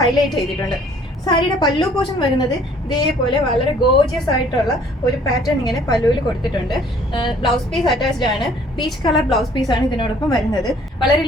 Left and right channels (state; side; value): normal; both; correlation 0.57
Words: ചെയ്തിട്ടുണ്ട്. സാരിയുടെ പല്ലു പോർഷൻ വരുന്നത് ഇതേപോലെ വളരെ ഗോർജിയസ് ആയിട്ടുള്ള ഒരു പാറ്റേൺ ഇങ്ങനെ പല്ലുവിൽ കൊടുത്തിട്ടുണ്ട്. ബ്ലൗസ് പീസ് അറ്റാച്ച്ഡ് ആണ്. പീച്ച് കളർ ബ്ലൗസ് പീസ് ആണ് ഇതിനോടൊപ്പം വരുന്നത്. വളരെ